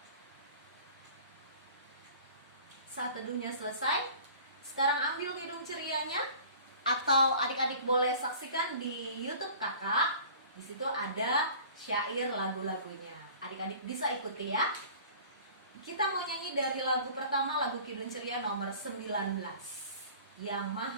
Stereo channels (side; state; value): both; inverted; correlation -0.45